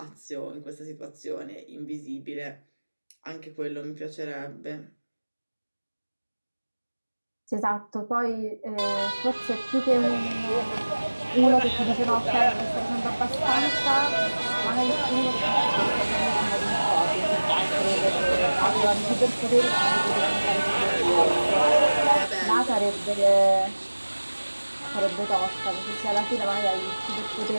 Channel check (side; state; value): both; inverted; correlation -1.00